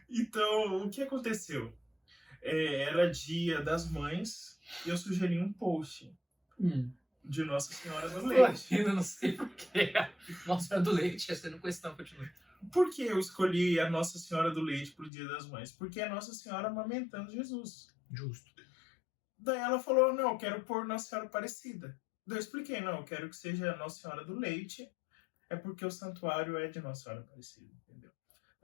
Então, o que aconteceu? Era dia das mães e eu sugeri um post Hum. de Nossa Senhora do Tô Leite. rindo, não sei porquê. Nossa, do leite, essa não questão, continua. Por que eu escolhi a Nossa Senhora do Leite pro Dia das Mães? Porque é Nossa Senhora amamentando Jesus. Justo. Daí ela falou, não, eu quero pôr Nossa Senhora Aparecida. Daí eu expliquei, não, eu quero que seja Nossa Senhora do Leite, é porque o santuário é de Nossa Senhora Aparecida, entendeu?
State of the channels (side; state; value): right; drops out; at 15.1 s